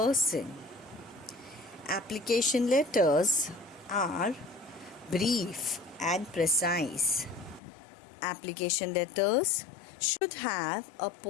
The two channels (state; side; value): drops out; right; at 7.6 s